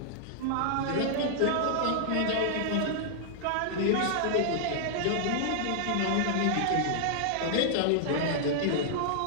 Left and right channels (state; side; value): different; both; correlation -0.01